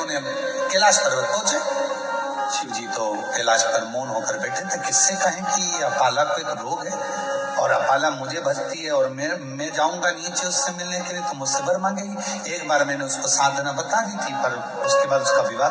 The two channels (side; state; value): both; identical; correlation 1.00